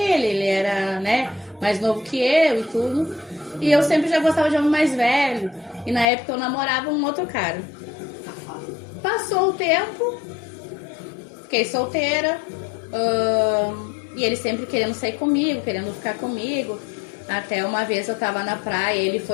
era, né, mais novo que eu e tudo. E eu sempre já gostava de homem mais velho. E na época eu namorava um outro cara. Passou o tempo, fiquei solteira. E ele sempre querendo sair comigo, querendo ficar comigo. Até uma vez eu tava na praia, ele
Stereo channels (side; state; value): right; drops out; at 6.1 s